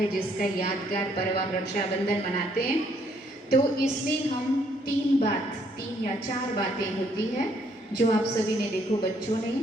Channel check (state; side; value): normal; both; correlation 0.68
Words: जिसका यादगार पर्व हम रक्षाबंधन मनाते हैं। तो इसमें हम तीन या चार बातें होती है जो आप सभी ने देखो, बच्चों ने